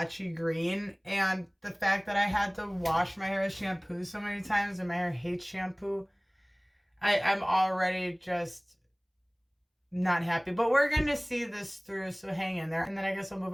green. And the fact that I had to wash my hair with shampoo so many times and my hair hates shampoo, I'm already just not happy. But we're going to see this through, so hang in there. And then I guess I'll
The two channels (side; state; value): both; identical; correlation 1.00